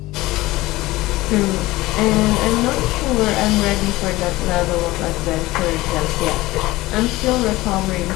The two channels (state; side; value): quieter; right; 18.9 dB